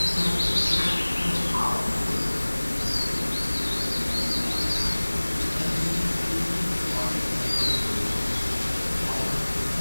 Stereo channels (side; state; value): both; inverted; correlation -1.00